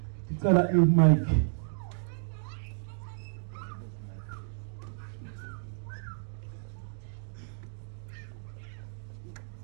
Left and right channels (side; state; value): left; silent; digital silence